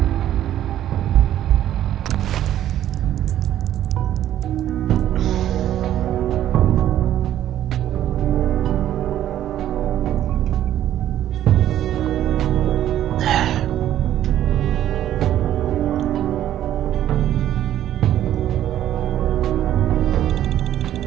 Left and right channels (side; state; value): left; quieter; 11.9 dB